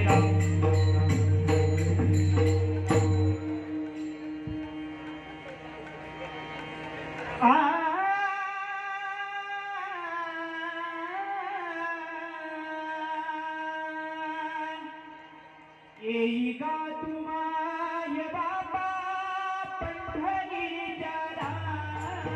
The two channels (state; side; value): identical; both; correlation 1.00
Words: येई गा तुमाय बाबा पंढरीच्या